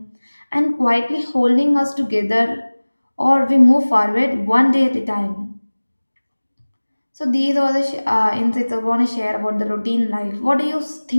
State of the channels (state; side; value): inverted; both; correlation -1.00